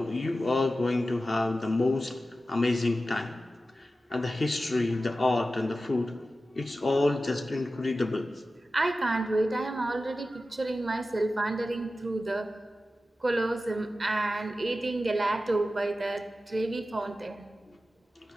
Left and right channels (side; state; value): both; normal; correlation 0.93